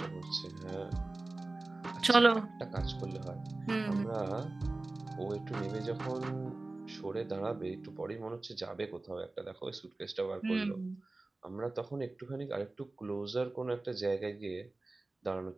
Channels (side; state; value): left; quieter; 3.1 dB